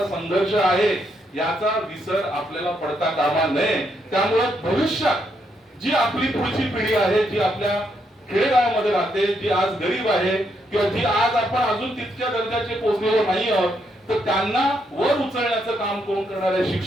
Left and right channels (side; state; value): both; normal; correlation 0.77